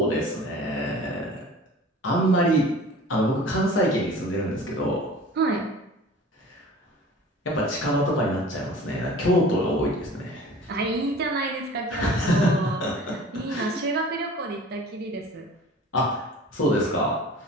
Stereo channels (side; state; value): both; normal; correlation 0.43